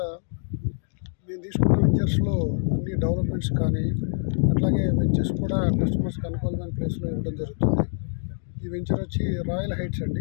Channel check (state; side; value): silent; right; 61 dB below the other